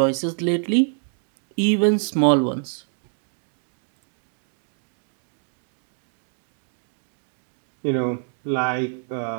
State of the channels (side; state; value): left; silent; digital silence